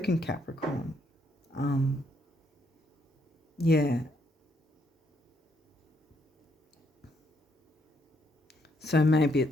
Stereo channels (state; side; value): normal; both; correlation 0.73